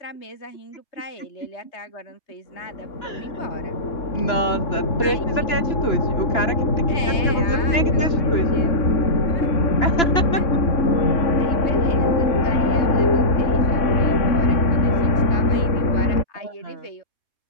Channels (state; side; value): late; right; 2.9 ms